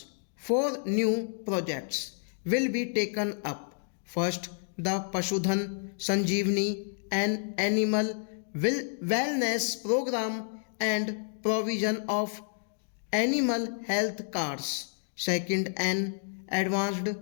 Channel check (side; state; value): right; silent; digital silence